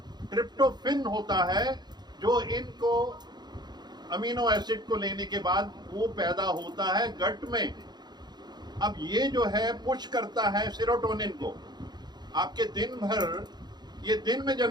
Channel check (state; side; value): late; left; 0.20 ms